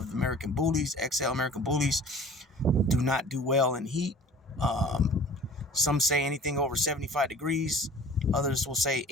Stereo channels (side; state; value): both; normal; correlation 0.46